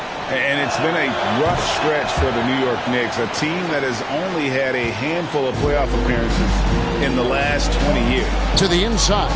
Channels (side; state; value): both; identical; correlation 1.00